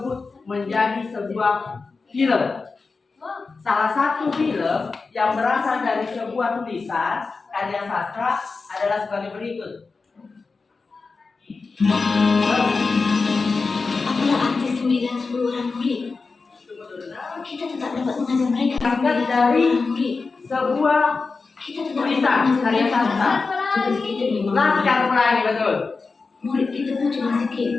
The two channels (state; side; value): quieter; right; 4.3 dB